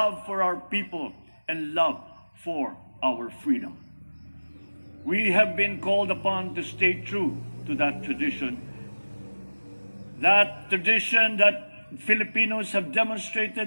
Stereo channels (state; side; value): inverted; both; correlation -1.00